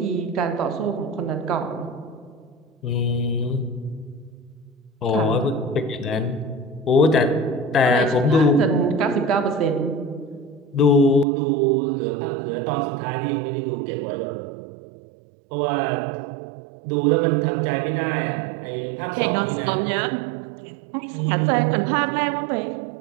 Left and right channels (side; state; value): left; drops out; at 11.2 s